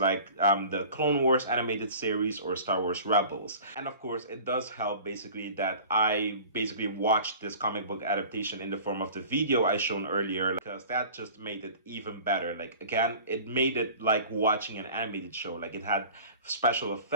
the Clone Wars animated series or Star Wars Rebels. And of course, it does help basically that I basically watched this comic book adaptation in the form of the video I shown earlier, because that just made it even better. Like, again, it made it like watching an animated show. Like, it had special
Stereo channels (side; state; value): both; inverted; correlation -0.42